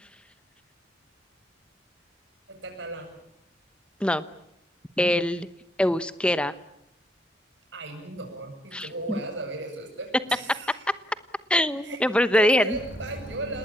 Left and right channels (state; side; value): normal; both; correlation 0.73